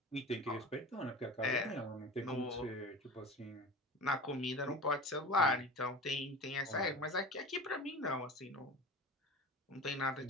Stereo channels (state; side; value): normal; both; correlation 0.34